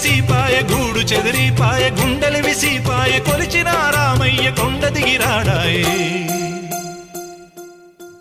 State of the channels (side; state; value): both; identical; correlation 1.00